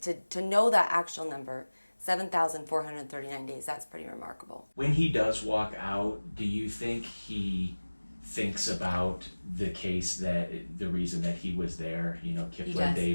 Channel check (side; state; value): both; inverted; correlation -1.00